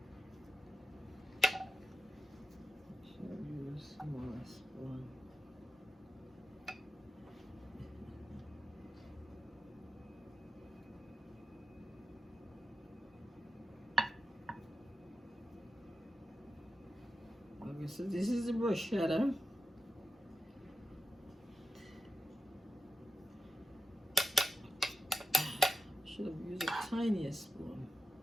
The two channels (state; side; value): normal; both; correlation 0.88